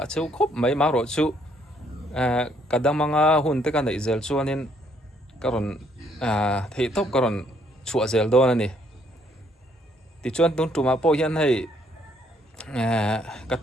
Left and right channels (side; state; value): both; normal; correlation 0.68